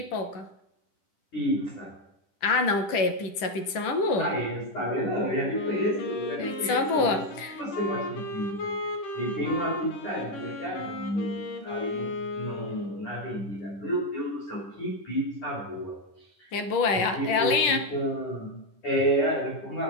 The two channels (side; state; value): right; late; 10 ms